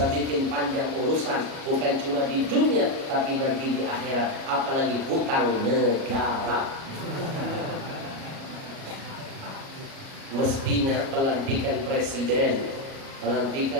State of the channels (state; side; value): late; left; 37 ms